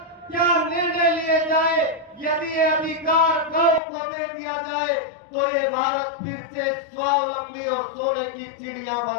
क्या निर्णय लिए जाए, यदि ये अधिकार गांव को दे दिया जाए, तो ये भारत फिर से स्वावलंबी और सोने की चिड़िया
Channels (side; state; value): right; drops out; at 3.8 s